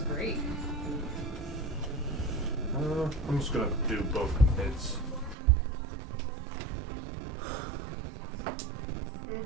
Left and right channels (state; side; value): drops out; left; at 5.4 s